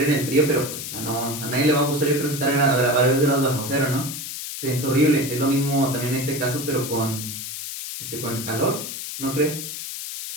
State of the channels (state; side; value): noise; left; hiss, 7 dB below the sound